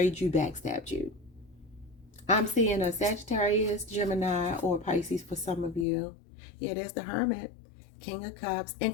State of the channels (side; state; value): right; drops out; at 5.9 s